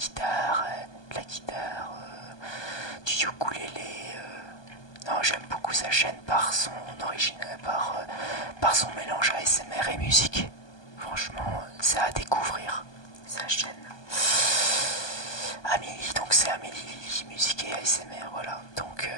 du ukulélé. Non, j'aime beaucoup sa chaîne par son original, par son mélange ASMR et musique. Franchement, c'est à découvrir sa chaîne. Amélie, donc c'est Amélie musique et ASMR, voilà. Donc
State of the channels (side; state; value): right; late; 1.2 ms